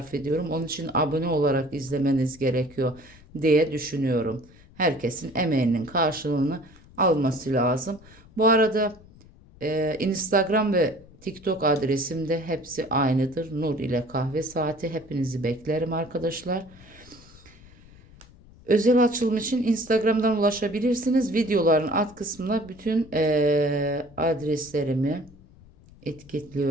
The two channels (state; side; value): noise; left; rumble, 23 dB below the sound